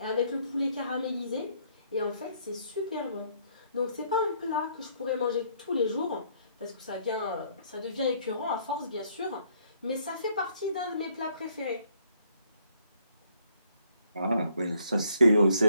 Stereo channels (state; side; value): inverted; both; correlation -0.67